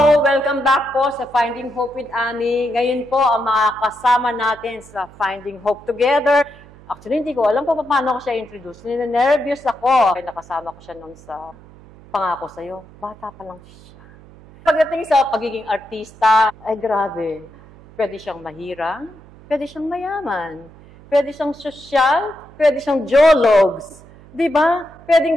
welcome back po sa Finding Hope with Annie. Ngayon po ang mga kasama natin sa Finding Hope Together. Actually, hindi ko alam po paano ko siya introduce. Nervous ako. Kaya nakasama ko siya noon sa Pangako Sa'yo. Bata pa lang siya. Pagdating sa pagiging artista, ay grabe. Pwede siyang mahirang, pwede siyang mayaman, pwede siyang sosyal, pwede siyang jologs. Diba?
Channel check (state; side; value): noise; right; hum, 22 dB below the sound